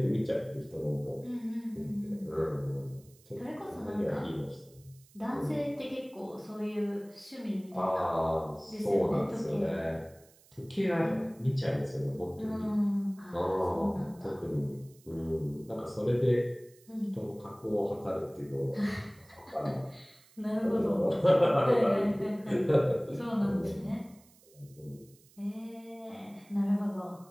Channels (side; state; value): right; noise; hiss, 27 dB below the sound